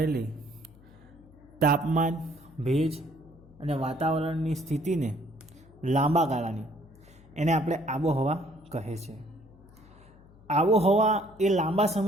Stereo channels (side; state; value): left; noise; hum, 24 dB below the sound